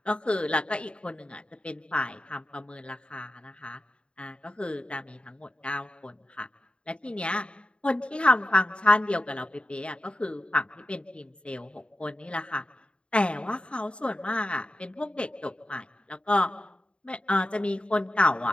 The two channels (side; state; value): right; late; 0.056 ms